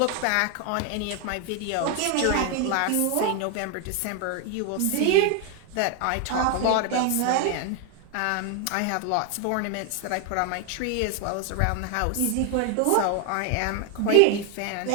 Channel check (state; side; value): different; both; correlation 0.01